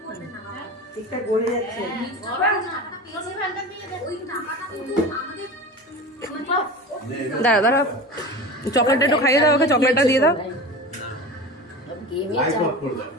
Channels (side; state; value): both; normal; correlation 0.31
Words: ঠিকঠাক গলে যাচ্ছে। দাঁড়া দাঁড়া, চকলেটটা একটু খাইয়ে দাও, ওকে চকলেটটা দিয়ে দাও।